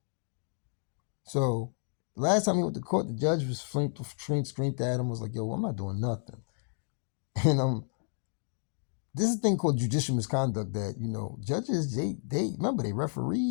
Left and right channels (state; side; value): silent; right; 57 dB below the other